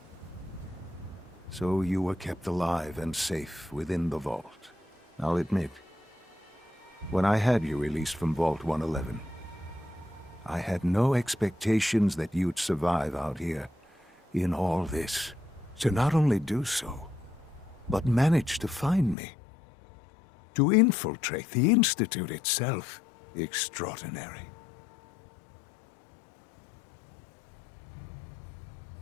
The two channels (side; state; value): right; drops out; at 19.2 s